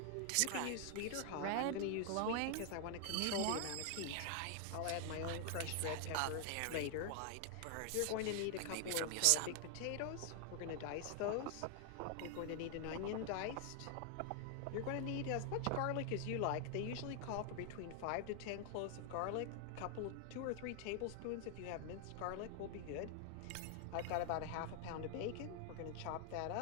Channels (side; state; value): both; different; correlation 0.00